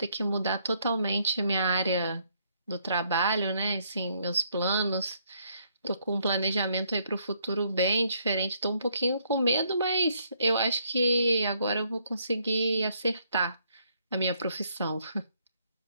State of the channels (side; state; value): both; inverted; correlation -0.70